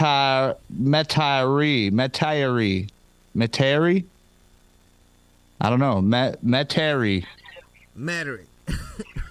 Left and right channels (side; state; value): both; identical; correlation 1.00